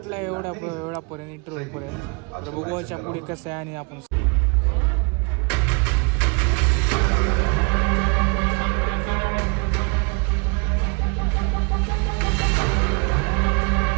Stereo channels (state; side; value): quieter; left; 33.9 dB